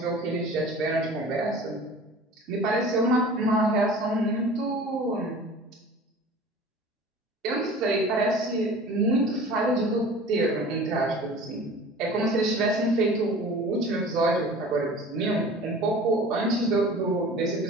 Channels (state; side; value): normal; both; correlation 0.42